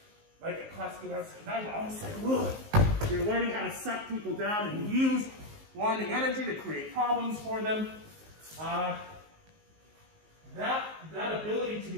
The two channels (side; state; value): left; late; 19 ms